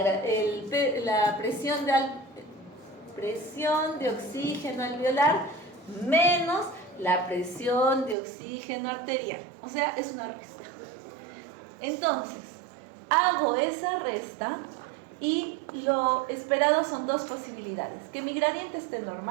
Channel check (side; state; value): left; drops out; at 8.2 s